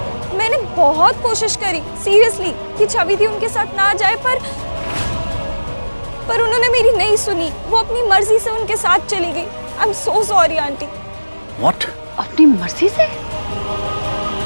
मैंने बहुत कोशिश करी सीरियसली कि छवि थी उनके साथ ना जाए, पर उन्होंने मेरी नहीं सुनी। वो अपनी मर्जी से उनके साथ चली गई। I am so sorry aunty. What? अपनी मर्जी से?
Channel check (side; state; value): both; inverted; correlation -1.00